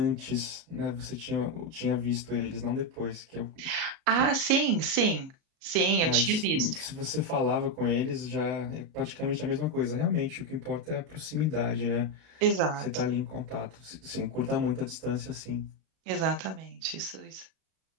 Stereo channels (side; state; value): left; late; 37 ms